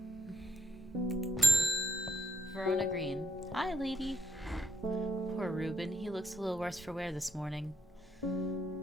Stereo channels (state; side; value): normal; both; correlation 0.73